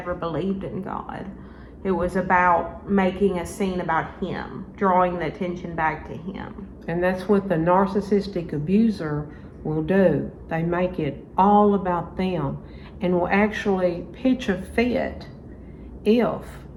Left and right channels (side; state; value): both; identical; correlation 1.00